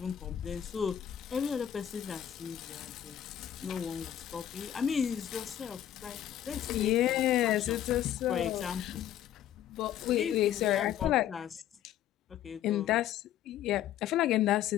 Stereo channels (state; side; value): quieter; right; 11.1 dB